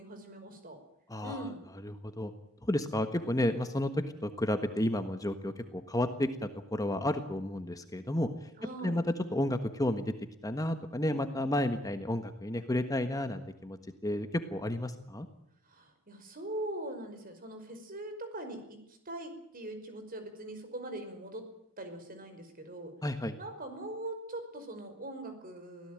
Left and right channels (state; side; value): normal; both; correlation 0.73